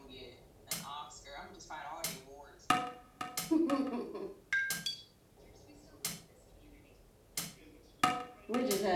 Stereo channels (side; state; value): both; identical; correlation 1.00